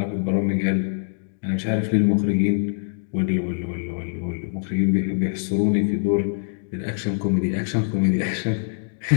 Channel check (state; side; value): silent; right; digital silence